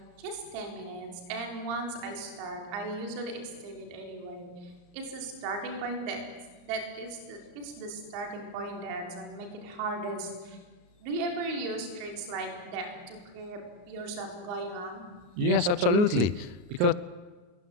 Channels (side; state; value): left; late; 34 ms